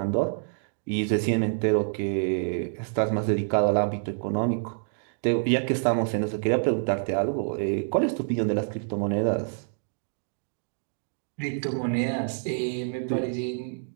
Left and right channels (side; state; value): left; silent; digital silence